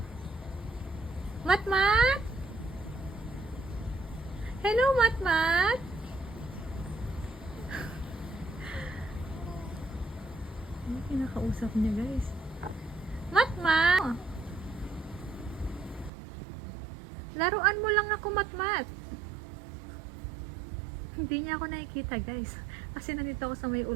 Matmat? Hello, Matmat? Yung kinakausap niya, guys. Matmat! Laruan mo lang ako, Matmat. Hindi niya ako nakikita, guys. Kasi nandito ako sa may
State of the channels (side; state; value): left; drops out; at 16.1 s